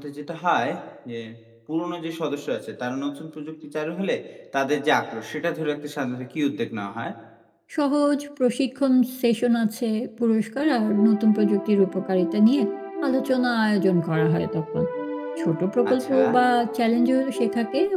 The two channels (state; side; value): identical; both; correlation 1.00